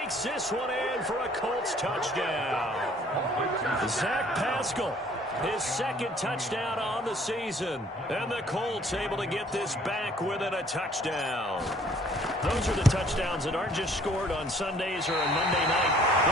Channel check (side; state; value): both; normal; correlation 0.58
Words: this one in for a Colts touchdown. Zach Pascal, his second touchdown on the season. And the Colts able to get this back within a touchdown. Those are the touchdowns that aren't just scored on Sundays or on Monday night.